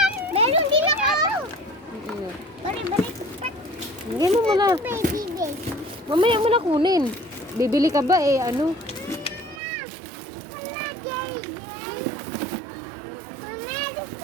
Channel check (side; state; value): left; drops out; at 9.6 s